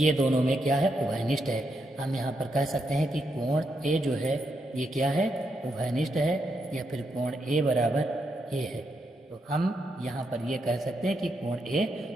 दोनों में क्या है, उभयनिष्ठ है। हम यहाँ पर कह सकते हैं कि कोण ए जो है ये क्या है, उभयनिष्ठ है, या फिर कोण ए बराबर ए है। तो हम यहाँ पर ये कह सकते हैं कि कोण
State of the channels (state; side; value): normal; both; correlation 0.81